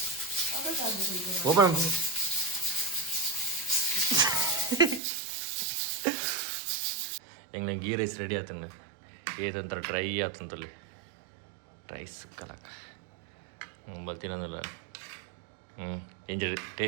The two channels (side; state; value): left; drops out; at 5.0 s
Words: ಓಪನ್ ಹೆಂಗೆ ಗೀ ರೈಸ್ ರೆಡಿ ಆತಂಗ ಏದಂತರ ಡ್ರೈ ಆತಂತಲ್ಲಿ ರೈಸ್ ಕಲಾಕ ಬರ್ತೀನಂದಲ್ಲ ಇಂಜ